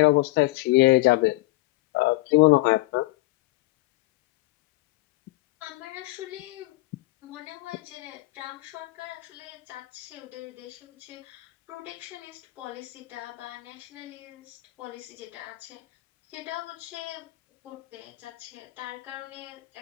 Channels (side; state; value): right; quieter; 20.1 dB